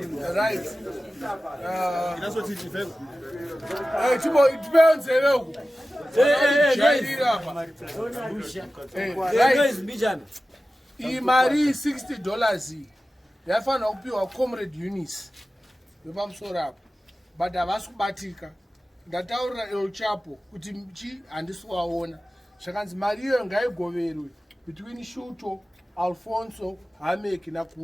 Right. That's what you think. Hey, depends. Imari $60 yafana kupiwa Comrade Eunice wepamusoro apo but havasi kubatika. Ndataurira El Chapo kuti mchi handisi waona zvakanzi mari iyo ngaigoverwe between Shuto, Alfonso, Hamek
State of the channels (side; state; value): both; normal; correlation 0.95